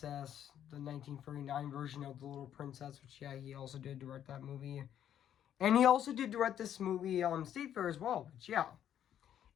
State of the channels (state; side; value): quieter; right; 10.2 dB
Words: the 1939 version of The Little Princess, which, yeah, he also did direct that movie. And he also did direct this movie, State Fair as well, which, yeah.